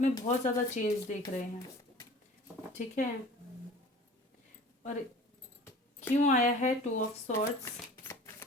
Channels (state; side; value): normal; both; correlation 0.44